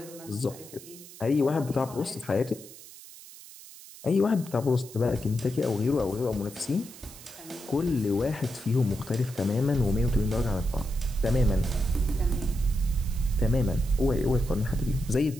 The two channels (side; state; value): right; noise; hiss, 17 dB below the sound